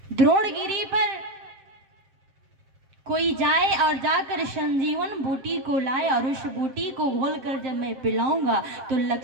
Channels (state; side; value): late; left; 7.6 ms